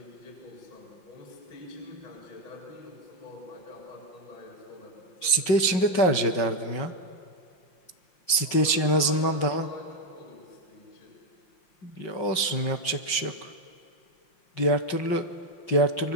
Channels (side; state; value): right; late; 5.3 ms